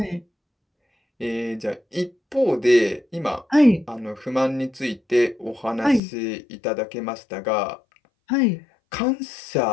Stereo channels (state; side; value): drops out; right; at 6.0 s